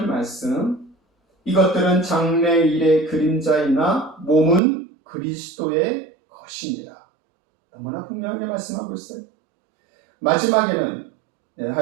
말씀. 이것들은 장래일의 그림자이나 몸은 그리스도의 것이니라. 너무나 분명하게 말씀하고 있어요. 마지막에는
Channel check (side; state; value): left; drops out; at 4.6 s